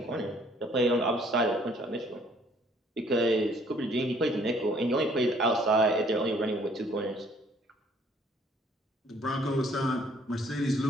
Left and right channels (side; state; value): both; normal; correlation 0.61